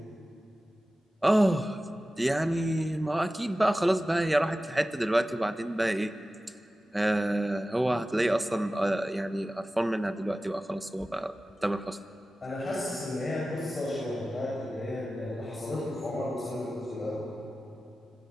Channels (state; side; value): normal; both; correlation 0.95